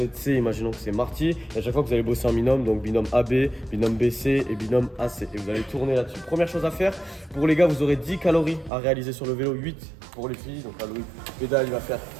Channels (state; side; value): drops out; left; at 8.7 s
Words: C, imaginons que c'est Marty. Et à chaque fois, vous allez bosser en binôme, donc binôme AB, binôme BC et binôme AC. Et vous allez tourner là-dessus. Première chose à faire, pour les gars, vous aurez 10 calories à réaliser sur le vélo, 8 pour les filles. Donc là, Loïc pédale, il va faire